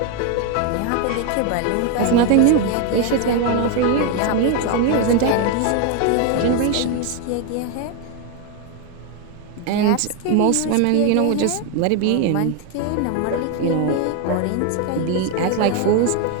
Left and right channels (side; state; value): both; different; correlation 0.01